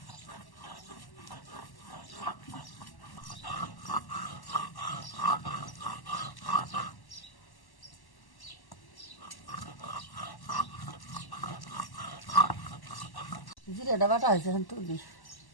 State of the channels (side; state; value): right; late; 1.1 ms